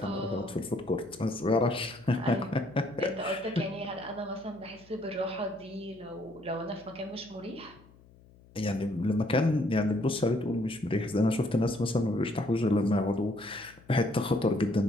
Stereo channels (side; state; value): left; noise; hum, 25 dB below the sound